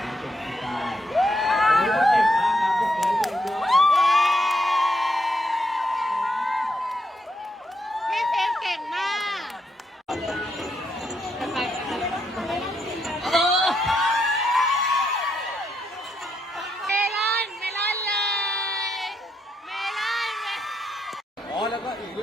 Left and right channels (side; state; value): both; normal; correlation 0.78